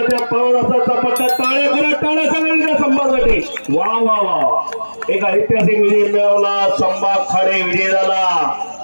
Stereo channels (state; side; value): inverted; both; correlation -1.00